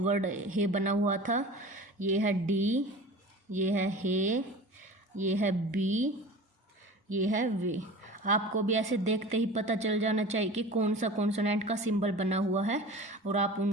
हे बना हुआ था। ये है डी, ये है हे, ये है बी, ये है वे। आपको भी ऐसे देखते ही पता चल जाना चाहिए कि कौन सा कॉन्सोनेंट का सिंबल बना हुआ है, और आप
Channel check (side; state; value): both; normal; correlation 0.37